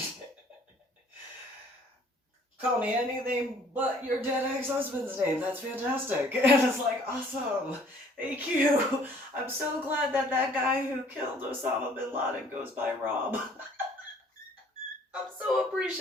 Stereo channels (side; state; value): both; normal; correlation 0.57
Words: call me anything but your dead ex-husband's name. That's fantastic. And it's like, awesome. Thank you. I'm so glad that guy who killed Osama bin Laden goes by Rob. I'm so